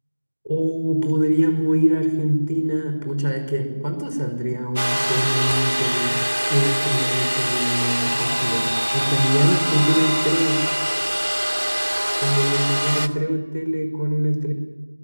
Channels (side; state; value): both; inverted; correlation -1.00